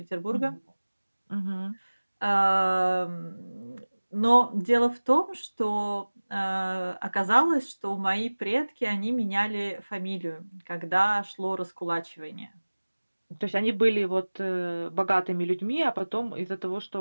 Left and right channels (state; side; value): inverted; both; correlation -1.00